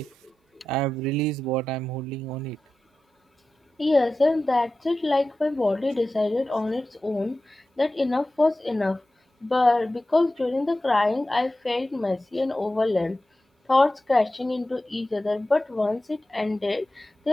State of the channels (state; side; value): normal; both; correlation 0.94